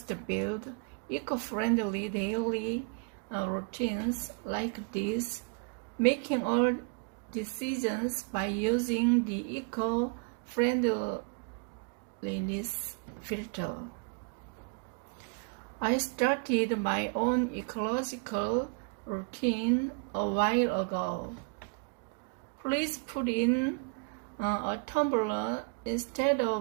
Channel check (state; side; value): quieter; left; 34.2 dB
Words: build eco-friendly daily routines like this, making all decisions by using the eco-friendliness filter. I started my own ecological routine a while ago. Please put in a tumbler instead